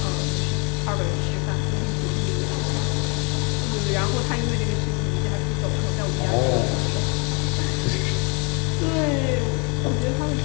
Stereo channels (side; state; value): right; quieter; 33.2 dB